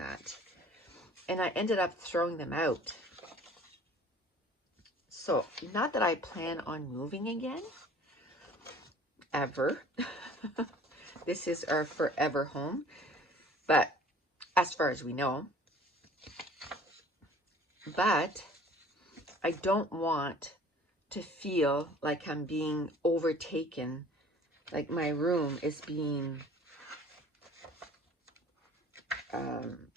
And I ended up throwing them out. So, not that I plan on moving again, ever. This is our forever home. But as far as we know, but I don't want to feel like I'm being overtaken, like my room is being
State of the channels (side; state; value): both; normal; correlation 0.50